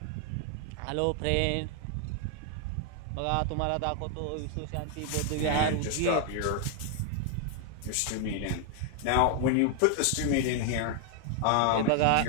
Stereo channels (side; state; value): both; different; correlation 0.00